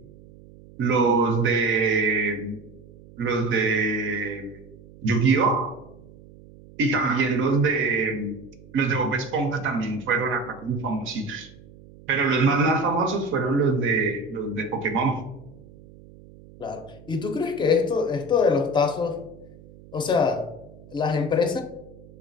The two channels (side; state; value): right; noise; hum, 22 dB below the sound